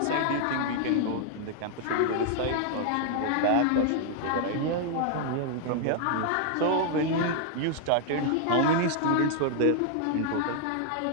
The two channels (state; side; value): different; both; correlation 0.00